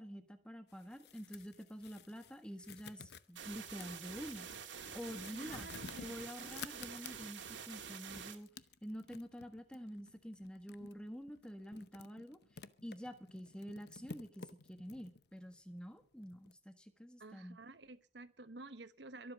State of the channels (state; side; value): normal; both; correlation 0.66